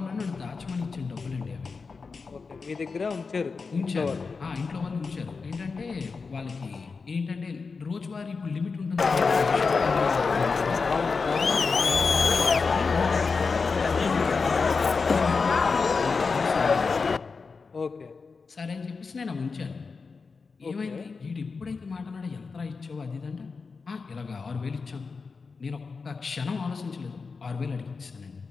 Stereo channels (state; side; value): quieter; right; 4.7 dB